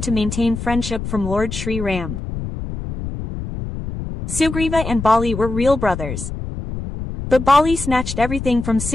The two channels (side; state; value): left; noise; rumble, 7 dB below the sound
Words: to maintain friendship from Lord Sri Ram. Sugriva and Bali were real brothers. But Bali snatched everything from